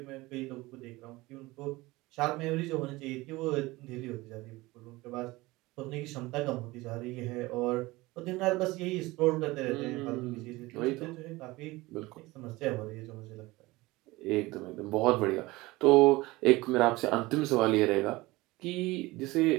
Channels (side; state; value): left; quieter; 20.7 dB